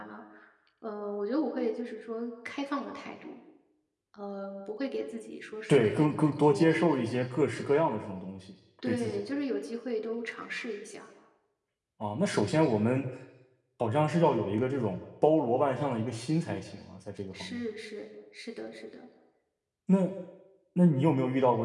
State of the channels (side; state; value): both; identical; correlation 1.00